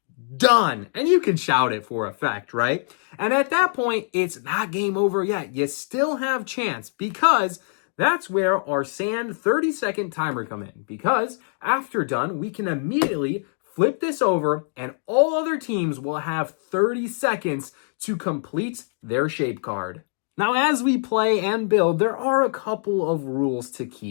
done. And you can shout it for effect, right? And at that point, it's not game over yet. You still have chance, because that's where our sand 30-second timer come in, because after done, we can immediately flip this over and all other teams will have 30 seconds to complete their shape card. Now, as we play and build, there are a couple of rules to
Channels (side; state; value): right; silent; digital silence